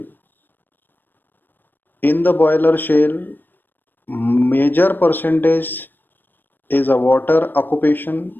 In the boiler shell, major percentage is a water occupation,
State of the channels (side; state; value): right; late; 0.093 ms